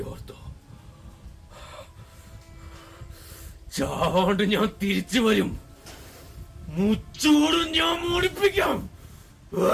ഓർത്തോ, ചാവാണ്ട് ഞാൻ തിരിച്ചു വരും. മുച്ചോടും ഞാൻ മോടിപ്പിക്കാം.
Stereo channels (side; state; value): both; identical; correlation 1.00